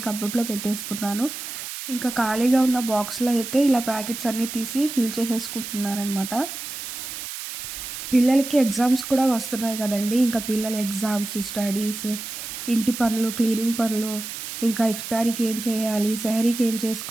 కబోర్డ్లో పెట్టేసుకున్నాను. ఇంకా ఖాళీగా ఉన్న బాక్స్లో అయితే ఇలా ప్యాకెట్స్ అన్నీ తీసి ఫిల్ చేసేసుకుంటున్నానమాట. పిల్లలకి ఎగ్జామ్స్ కూడా వస్తున్నాయి కదండి. ఇంకా పిల్లల ఎగ్జామ్స్, స్టడీస్, ఇంటి పనులు, క్లీనింగ్ పనులు, ఇంకా ఇఫ్తారీకి ఏం చేయాలి, సెహరీకి ఏం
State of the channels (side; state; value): right; noise; hiss, 8 dB below the sound